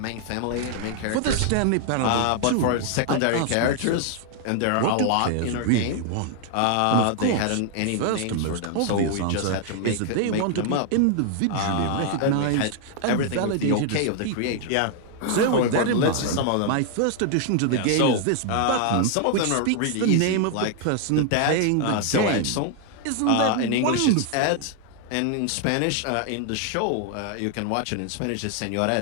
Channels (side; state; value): both; different; correlation 0.00